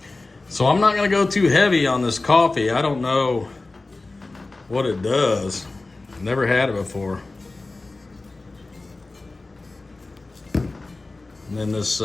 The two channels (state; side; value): quieter; right; 3.3 dB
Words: So I'm not gonna go too heavy on this coffee. I don't know what it does. Never had it before. And then this